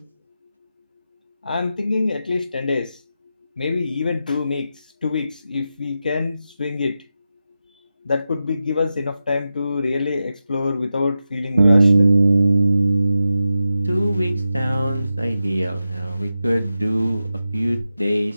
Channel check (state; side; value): inverted; both; correlation -0.90